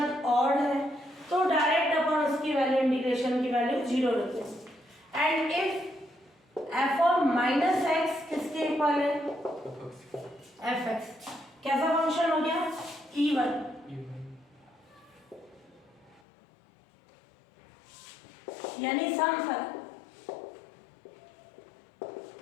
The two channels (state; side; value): drops out; right; at 16.2 s